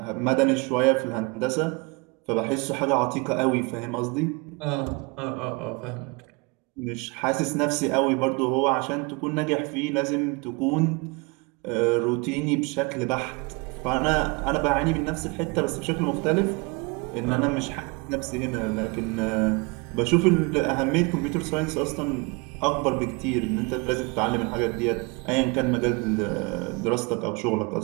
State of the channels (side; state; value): left; quieter; 28.4 dB